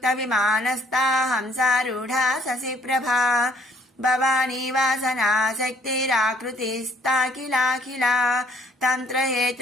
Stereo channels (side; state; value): both; normal; correlation 0.62